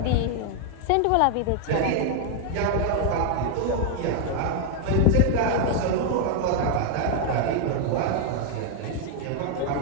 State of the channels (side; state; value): both; different; correlation 0.00